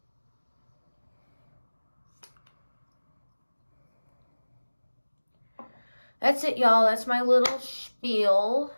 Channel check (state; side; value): inverted; both; correlation -1.00